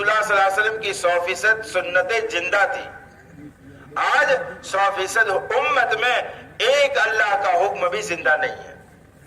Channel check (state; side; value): identical; both; correlation 1.00